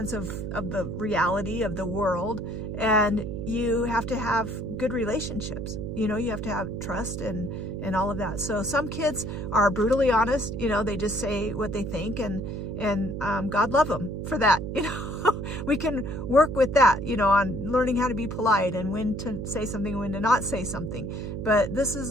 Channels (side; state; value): right; noise; hum, 5 dB below the sound